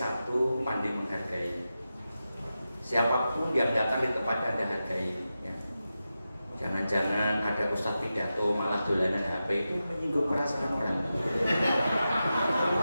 pandai menghargai. Siapapun yang datang di tempat Anda hargai. Ya. Jangan-jangan ada ustadz pidato malah dolanan HP itu menyinggung perasaan orang.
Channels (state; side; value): inverted; both; correlation -0.91